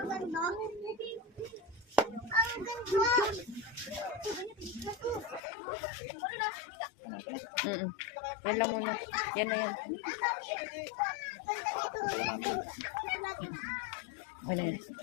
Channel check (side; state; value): right; drops out; at 5.4 s